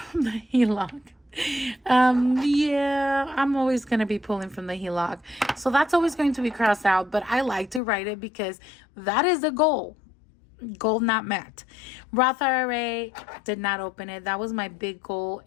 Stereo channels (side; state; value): right; drops out; at 7.8 s